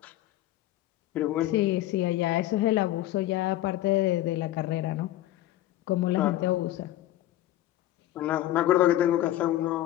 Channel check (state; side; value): quieter; right; 14.6 dB